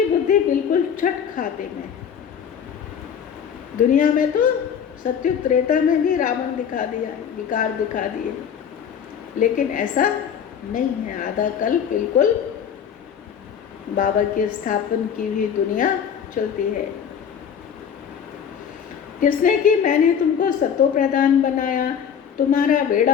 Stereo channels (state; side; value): quieter; right; 7.9 dB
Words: बुद्धि बिल्कुल छठ खाते में। दुनिया में तो सत्युग त्रेता में भी रावण दिखा दिया, विकार दिखा दिए, लेकिन ऐसा नहीं है। आधा कल बिल्कुल बाबा के स्थापन की हुई दुनिया चलती है। किसने कि मैंने तुमको सतो प्रधान बनाया, तुम्हारा